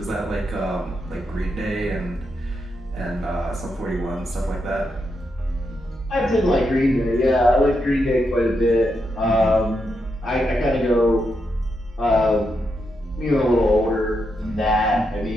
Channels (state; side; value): normal; both; correlation 0.83